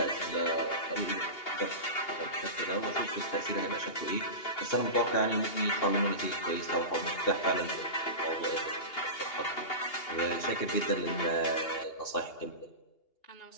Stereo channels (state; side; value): late; right; 2.8 ms